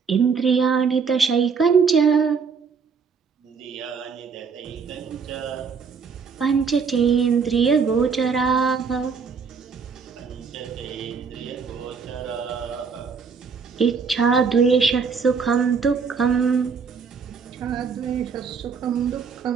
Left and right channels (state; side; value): quieter; left; 5.7 dB